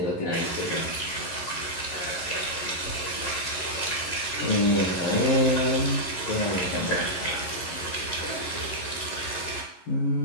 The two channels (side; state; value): right; late; 11 ms